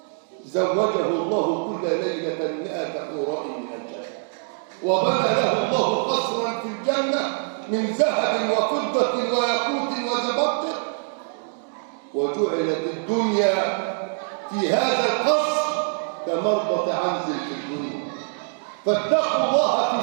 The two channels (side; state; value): left; silent; 60 dB below the other